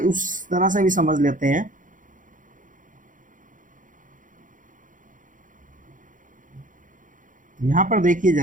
उस तरह से भी समझ लेते हैं। यहां पर देखिए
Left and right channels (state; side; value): late; left; 0.38 ms